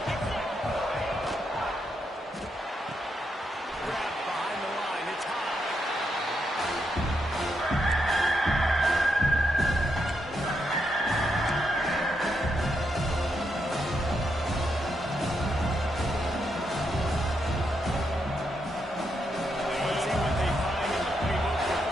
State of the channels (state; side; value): normal; both; correlation 0.81